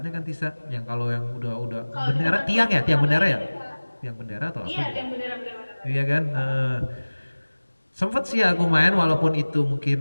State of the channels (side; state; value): both; inverted; correlation -1.00